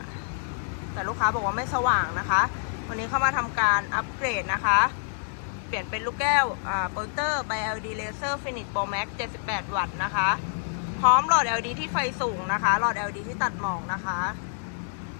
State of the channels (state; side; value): silent; right; digital silence